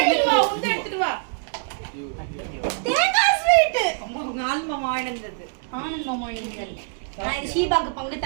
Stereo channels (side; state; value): left; silent; digital silence